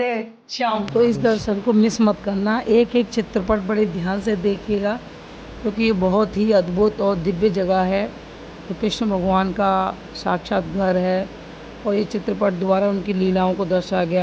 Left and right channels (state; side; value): identical; both; correlation 1.00